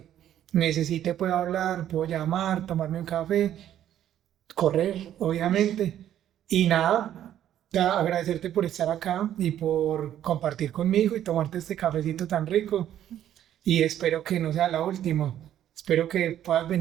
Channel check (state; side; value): quieter; left; 11.2 dB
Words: necesite puedo hablar, puedo llamar, tomarme un café, correr, obviamente. Y nada, agradecerte por estar acá y por compartir conmigo y tomarte este cafecito tan rico. Y espero que no sea la última. Espero que puedas